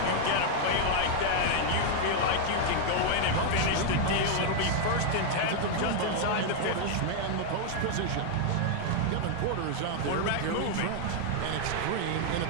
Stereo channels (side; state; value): both; different; correlation 0.00